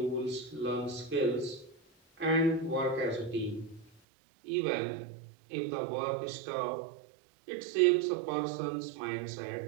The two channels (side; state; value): left; drops out; at 3.9 s